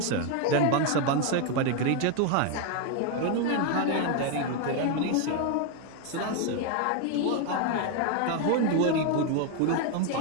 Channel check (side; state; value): both; different; correlation 0.01